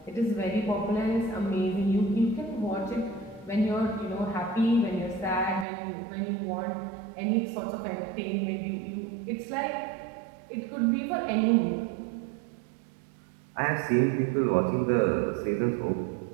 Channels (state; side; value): drops out; left; at 5.7 s